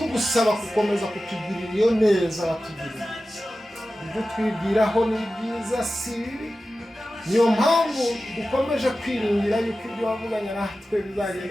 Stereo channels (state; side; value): normal; both; correlation 0.94